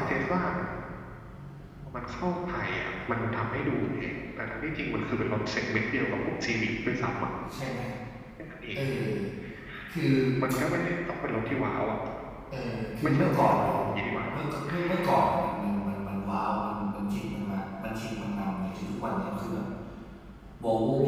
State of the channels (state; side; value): identical; both; correlation 1.00